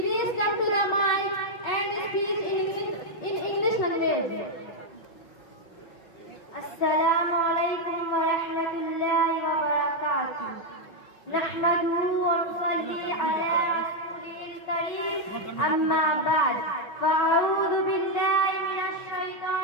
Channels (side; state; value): right; late; 5.4 ms